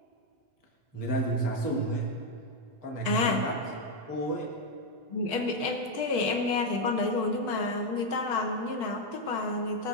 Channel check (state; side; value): late; left; 8.0 ms